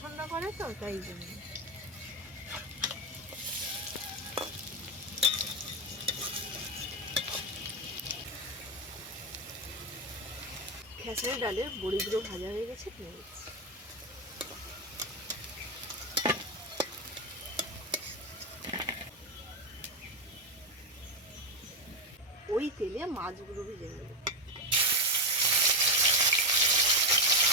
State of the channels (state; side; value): normal; both; correlation 0.09